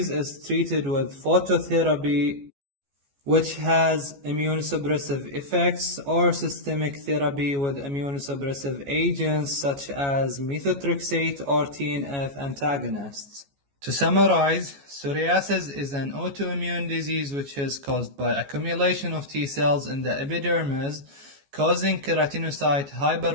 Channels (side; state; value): left; late; 14 ms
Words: is treated with phototherapy, which has immunosuppressive effects, or systemic therapy with immunosuppressive agents such as methotrexate or TNF antagonists. To summarize, psoriasis is an autoimmune disease which is caused by accumulation of T cells in the epidermis, causing keratinocyte